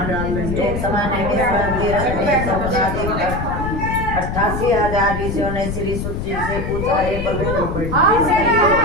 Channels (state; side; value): noise; left; rumble, 4 dB below the sound